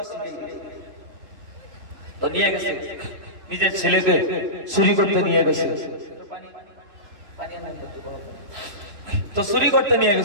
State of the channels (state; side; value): late; left; 3.0 ms